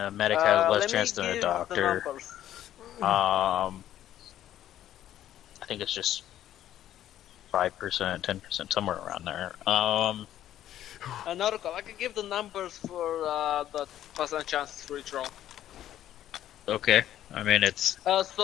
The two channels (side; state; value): right; quieter; 12.0 dB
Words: medic has less Let me chance than a give the doctor. numbers. I think it's just 5%, 10%, somewhere around there. Another call. I can give the numbers for the percent chances for each roll. Okay. I mean, it's